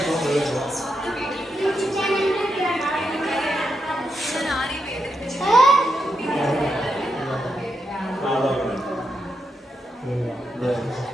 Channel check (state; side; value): normal; both; correlation 0.84